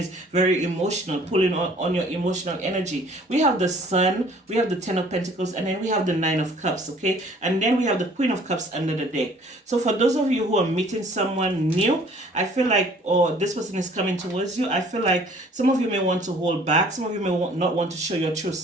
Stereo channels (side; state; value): both; normal; correlation 0.54